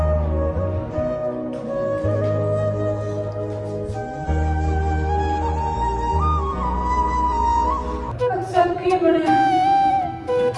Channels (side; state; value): both; identical; correlation 1.00